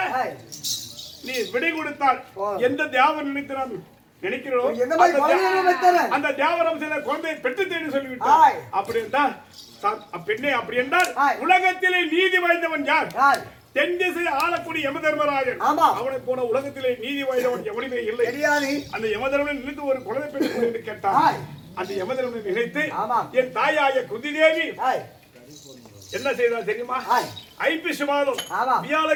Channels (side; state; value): both; identical; correlation 1.00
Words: ஆய் நீ விடை கொடுத்தால் ஓ. எந்த தேவன் நினைத்து நாம் நினைக்கிறோம் எந்த மாதிரி குழந்தையை வைத்தரேன்? அந்த தேவரம் சில குழந்தையை பெற்று தேடி சொல்லிவிட்டார் ஆய். அப்படி என்றால் பெண்ணே அப்படி என்றால் ஆய். உலகத்திலே நீதி வாய்ந்தவன் யார் ஆய் தென் திசை ஆளக்கூடிய யமதர்மராஜன் ஆமா. அவனை போன உலகத்திலே நீதி வாய்ந்தவன் எவனுமே இல்லை தெரியாது அந்த யமதர்மனை நினைத்து ஒரு குழந்தை பெற்று என்று கேட்டான் ஆய். அந்த யமதர்மனை நினைத்து ஆமா. என் தாயாய குந்திதேவி ஆய் என்ன செய்தார் தெரியுமா ஆய். ஐப்பசி மாதம் ஆமா.